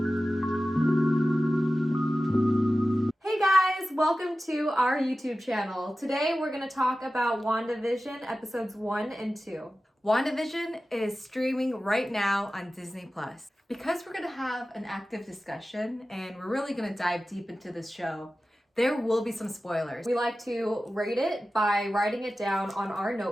Hey guys, welcome to our YouTube channel. Today we're going to talk about WandaVision episodes 1 and 2. WandaVision is streaming right now on Disney+. Because we're going to have an active discussion and we're really going to dive deep into this show, there will be some spoilers. We like to rate it by writing it down on our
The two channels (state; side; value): normal; both; correlation 0.95